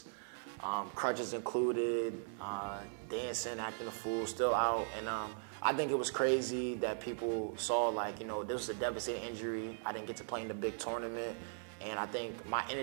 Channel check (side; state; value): left; silent; digital silence